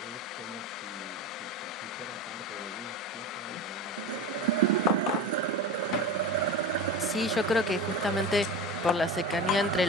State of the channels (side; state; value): both; normal; correlation 0.28